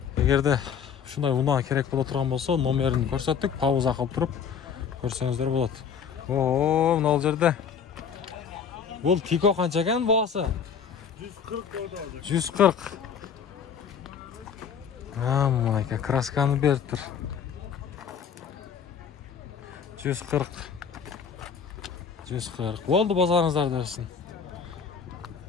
Егерде шундай унаа керек боло турган болсо, номерин көрсөттүк, пауза кылып туруп көрсөңүздөр болот. Мына ал жерде. Бул тико канча экен баасы? 140 деп алды. 140. Мына красканы берип тур. 140. 140. Болду, базарыңыздар дерсин.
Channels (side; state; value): right; quieter; 7.0 dB